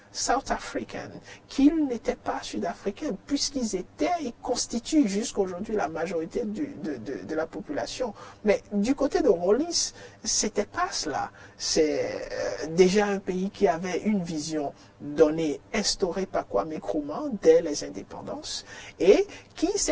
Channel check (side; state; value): both; identical; correlation 1.00